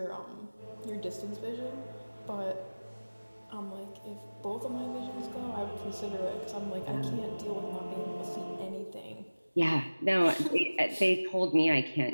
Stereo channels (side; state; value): both; inverted; correlation -1.00